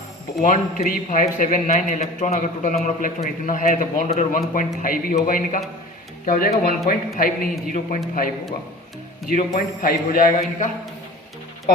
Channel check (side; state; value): both; normal; correlation 0.40